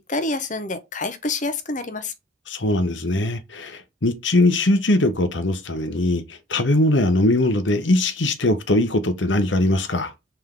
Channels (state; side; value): normal; both; correlation 0.54